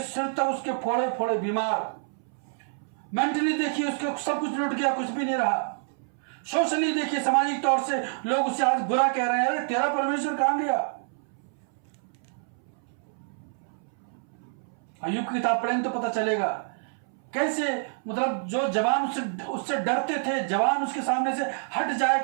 सिर तक उसके फोड़े फोड़े बीमार। मेंटली देखिए उसके सब कुछ लुट गया, कुछ भी नहीं रहा। सोशली देखिए, सामाजिक तौर से लोग उसे आज बुरा कह रहे हैं, अरे तेरा परमेश्वर कहां गया? अय्यूब की किताब पढ़ेंगे तो पता चलेगा कैसे, मतलब जो जवान उससे डरते थे, जवान उसके सामने से हट जाया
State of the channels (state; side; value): silent; left; 60 dB below the other